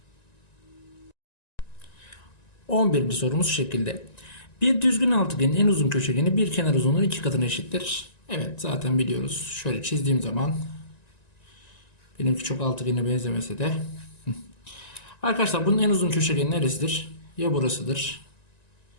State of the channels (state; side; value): late; right; 1.9 ms